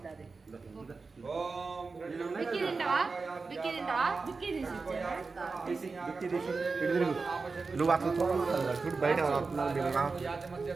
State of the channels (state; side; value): quieter; left; 4.3 dB